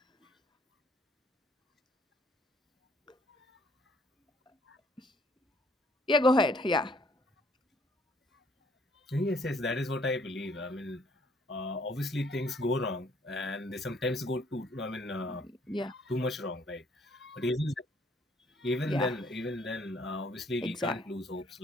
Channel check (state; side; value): normal; both; correlation 0.64